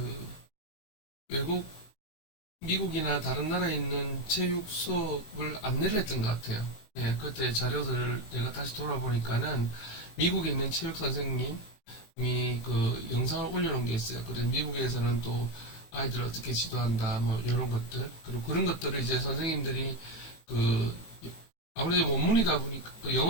외국 미국이나 다른 나라에 있는 체육 수업을 안내를 했던 것 같아요. 예, 그때 자료들을 내가 다시 돌아보니까는 미국에 있는 체육 선생님이 그 영상을 올려놓은 게 있어요. 그래서 미국에서는 또 아이들을 어떻게 지도한다, 뭐 이런 것들, 그리고 그런 것들을 이제 선생님들이 그 아무래도 원문이다 보니까 그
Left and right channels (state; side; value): late; right; 19 ms